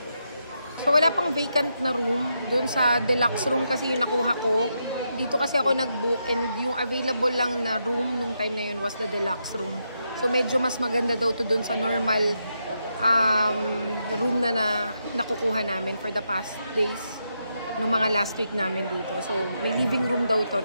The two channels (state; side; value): inverted; both; correlation -0.83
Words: So wala pang vacant na room. Doon sa deluxe room kasi yung nakuha ko. Dito kasi ako nag-book and yung available lang na room nung time na yun was the deluxe room. So medyo mas maganda daw to doon sa normal room na nakukuha namin for the past days. Nung mga last week namin dito. So may living room daw to,